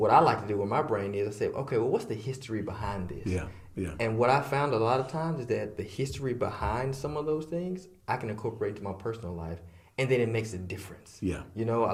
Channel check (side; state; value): both; identical; correlation 1.00